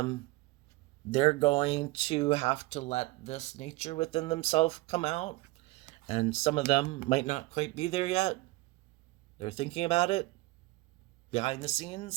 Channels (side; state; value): left; quieter; 20.6 dB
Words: they're going to have to let this nature within themselves come out. And some of them might not quite be there yet. They're thinking about it behind the